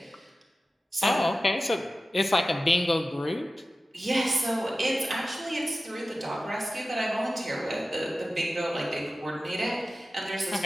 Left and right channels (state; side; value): normal; both; correlation 0.95